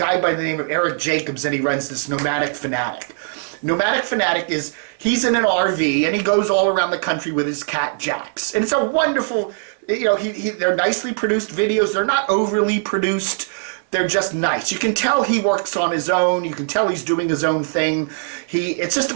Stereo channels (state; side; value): silent; left; digital silence